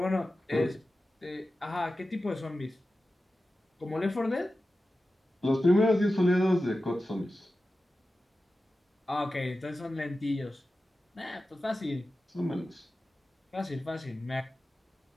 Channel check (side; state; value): both; normal; correlation 0.94